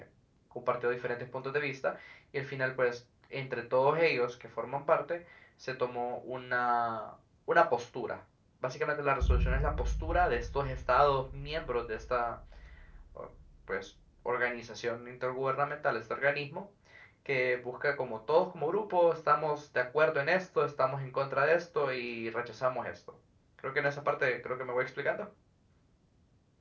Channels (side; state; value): both; identical; correlation 1.00